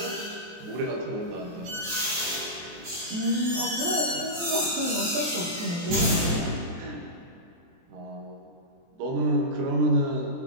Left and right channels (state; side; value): late; left; 23 ms